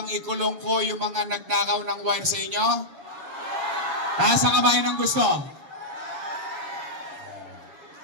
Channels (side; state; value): left; late; 7.1 ms